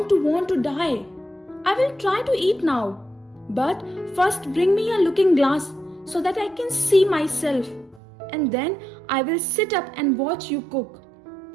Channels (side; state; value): left; drops out; at 8.0 s